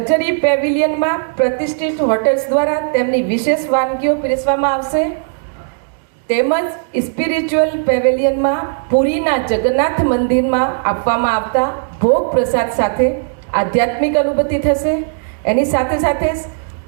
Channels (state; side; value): silent; left; digital silence